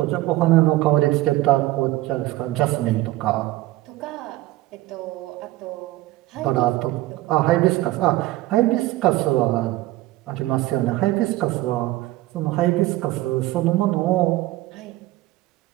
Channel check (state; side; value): quieter; left; 17.7 dB